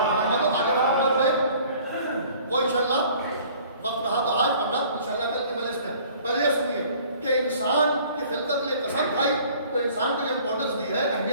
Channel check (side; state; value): both; inverted; correlation -0.52